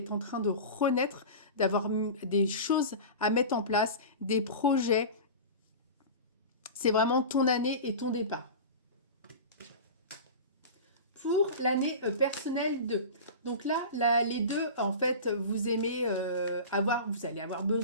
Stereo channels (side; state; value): both; inverted; correlation -0.30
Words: en train de renaître, d'avoir des choses à mettre en place, des projets. C'est vraiment ton année et ton départ. Pour l'année personnelle 2. Donc là, les deux, en fait, vous aimez vous allez avoir